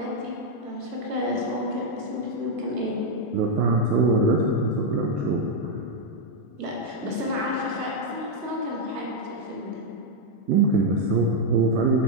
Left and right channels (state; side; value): late; right; 1.4 ms